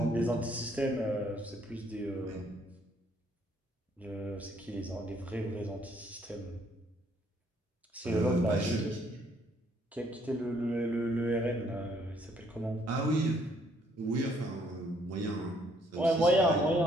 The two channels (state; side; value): normal; both; correlation 0.66